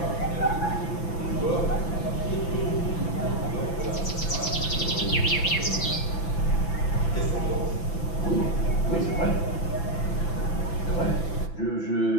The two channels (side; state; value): right; late; 6.0 ms